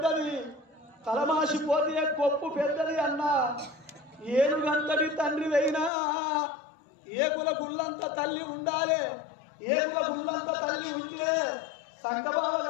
తలమాసిపోతే కొప్పు పెద్దది అన్న ఏనుగంతటి తండ్రి అయినా ఏకుల గుళ్ళంత తల్లి ఉండాలి ఏకుల గుళ్ళంత తల్లి ఉంటే సంకబావ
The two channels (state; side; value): drops out; right; at 5.9 s